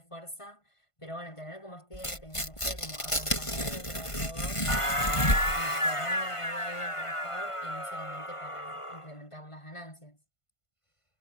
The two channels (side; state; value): right; late; 1.5 ms